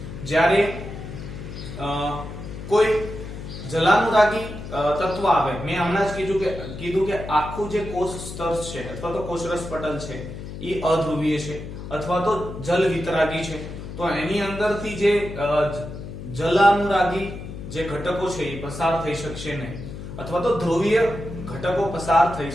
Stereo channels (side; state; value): left; noise; hum, 10 dB below the sound